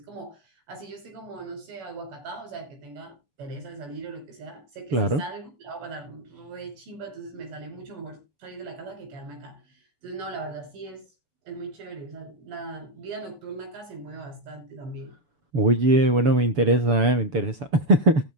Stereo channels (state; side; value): late; left; 6.9 ms